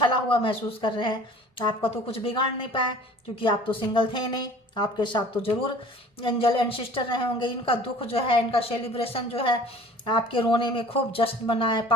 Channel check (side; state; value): both; normal; correlation 0.47